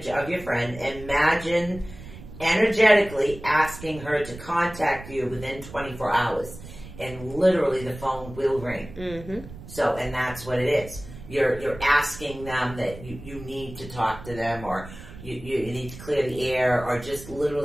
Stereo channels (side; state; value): right; noise; rumble, 15 dB below the sound